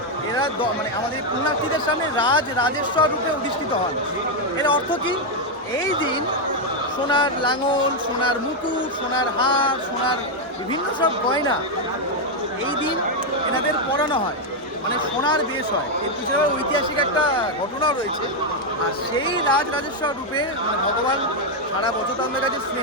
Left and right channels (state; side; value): normal; both; correlation 0.02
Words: এরা মানে আমাদের পুণ্যার্থীদের সামনে রাজেশ্বর রূপে অধিষ্ঠিত হন। এর অর্থ কি? এই দিন সোনার লাঙল, সোনার মুকুট, সোনার হার, সোনার বিভিন্ন সব গয়না এই দিন এনাদের পরানো হয়, মানে সোনার বেশ হয়। এর পিছনে ঐতিহাসিক একটা ঘটনাও রয়েছে। আর সেই রাজেশ্বর রূপে মানে ভগবান সারা বছর তাদের কাছে